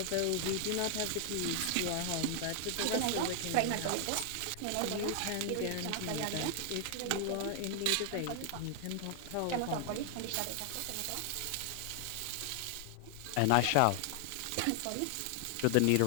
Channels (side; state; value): both; different; correlation 0.00